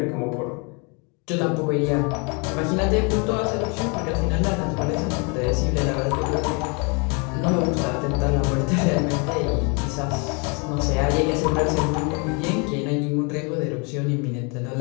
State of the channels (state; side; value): quieter; right; 33.2 dB